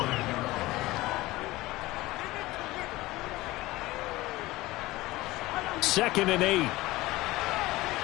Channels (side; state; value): right; quieter; 19.0 dB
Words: Second and 8.